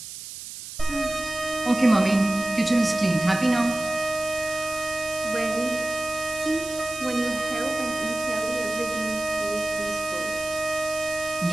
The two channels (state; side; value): noise; right; hiss, 11 dB below the sound